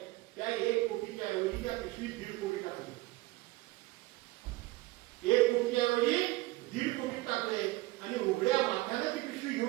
त्या 1 कोटीच्या ऐवजी त्या पिशवीत 1.5 कोटी टाकले. 1 कोटीच्या ऐवजी 1.5 कोटी टाकले आणि उघड्या माथ्याने ती पिशवी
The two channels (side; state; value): left; quieter; 20.1 dB